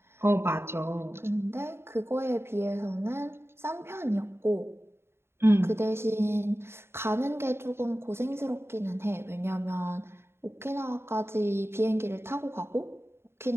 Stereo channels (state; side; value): late; left; 0.12 ms